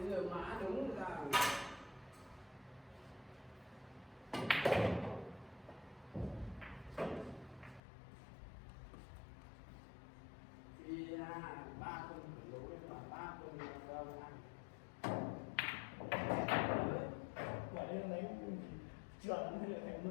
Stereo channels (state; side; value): drops out; right; at 7.8 s